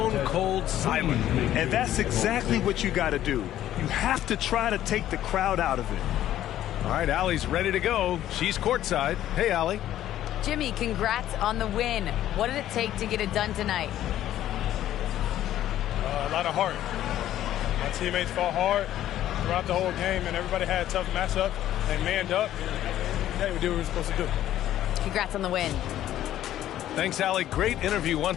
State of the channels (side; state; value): right; quieter; 12.5 dB